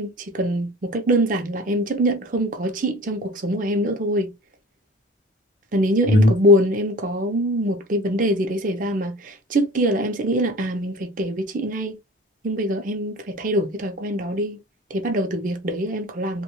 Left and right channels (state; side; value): normal; both; correlation 0.41